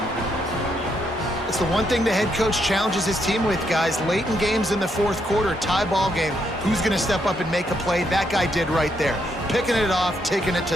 It's the one thing the head coach challenges his team with, guys. Late in games in the fourth quarter, tie ball game. Who's going to step up and make a play? That guy did right there. Picking it off, taking it to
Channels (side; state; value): both; normal; correlation 0.77